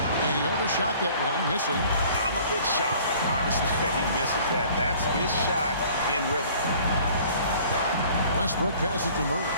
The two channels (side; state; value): both; inverted; correlation -0.52